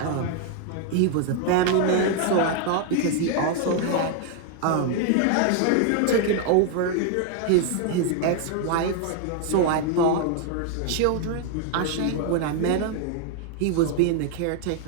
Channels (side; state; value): both; different; correlation 0.00